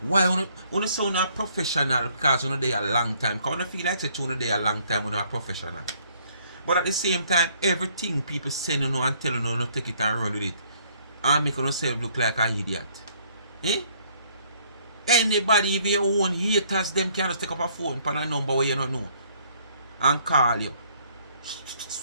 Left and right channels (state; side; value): inverted; both; correlation -0.64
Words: you sound a professional because you know they a long time. Because you feel like you know they a long time when you are professional. But at the same time, everything people send you know and tell you know, take it and run with it. And make yourself look like an idiot. Eh? Anybody, even your own haters, them can just take up a phone for a number where you don't know. And call you.